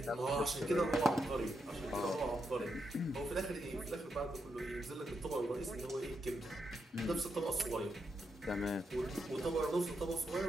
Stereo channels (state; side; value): normal; both; correlation 0.83